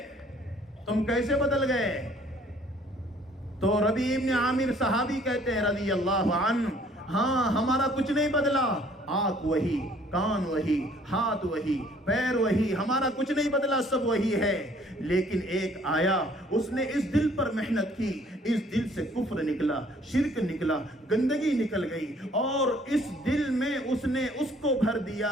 تم کیسے بدل گئے؟ تو ربیع ابن عامر صحابی کہتے ہیں رضی اللہ عنہ، ہاں ہمارا کچھ نہیں بدلا، آنکھ وہی، کان وہی، ہاتھ وہی، پیر وہی، ہمارا کچھ نہیں بدلا، سب وہی ہے۔ لیکن ایک آیا، اس نے اس دل پر محنت کی، اس دل سے کفر نکلا، شرک نکلا، گندگی نکل گئی، اور اس دل میں اس نے اس کو بھر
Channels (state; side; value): normal; both; correlation 0.59